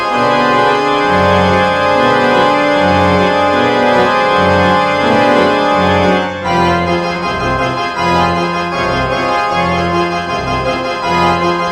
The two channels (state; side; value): identical; both; correlation 1.00